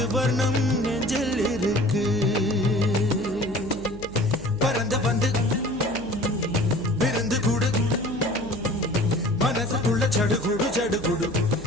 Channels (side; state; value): right; noise; hum, 16 dB below the sound